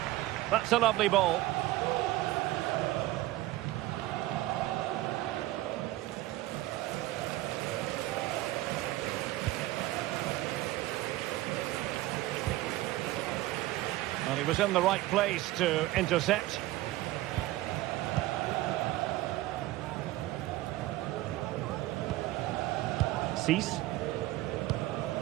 That's a lovely ball. Well, he was in the right place to intercept. Cease.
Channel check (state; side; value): quieter; left; 17.1 dB